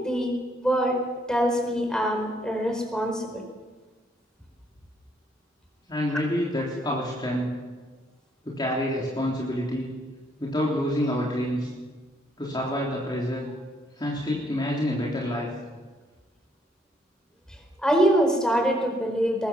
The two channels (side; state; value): both; normal; correlation 0.70